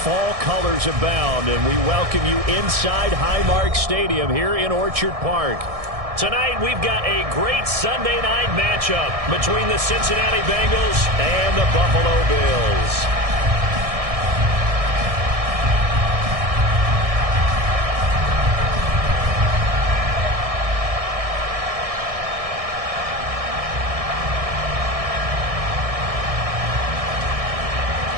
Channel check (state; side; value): late; left; 1.6 ms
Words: Fall colors abound, and we welcome you inside Highmark Stadium here in Orchard Park. Tonight, we've got a great Sunday night matchup between the Cincinnati Bengals and the Buffalo Bills.